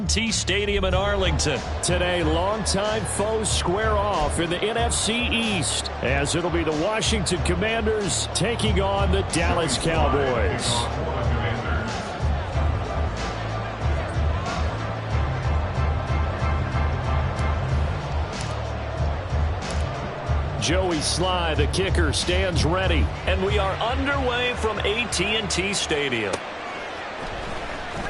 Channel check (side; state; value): both; identical; correlation 1.00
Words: Stadium in Arlington. Today, longtime foes square off in the NFC East, as it'll be the Washington Commanders taking on the Dallas Cowboys. Joey Sly, the kicker, stands ready. And we are underway from AT&T Stadium.